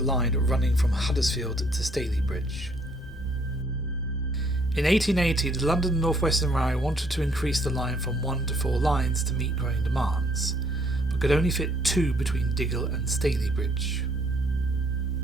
running from Huddersfield to Stalybridge. In 1880 the London and North Western Railway wanted to increase the line from 1 to 4 lines to meet growing demands, but could only fit 2 between Diggle and Stalybridge.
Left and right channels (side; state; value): both; normal; correlation 0.66